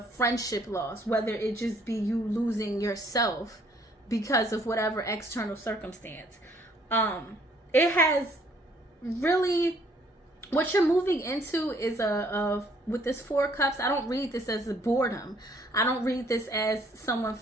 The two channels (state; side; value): normal; both; correlation 0.63